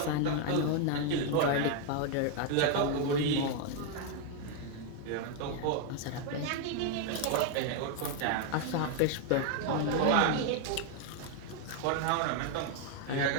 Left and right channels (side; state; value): both; different; correlation 0.00